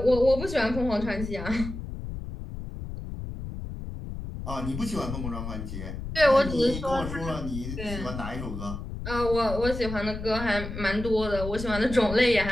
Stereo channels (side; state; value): left; noise; rumble, 7 dB below the sound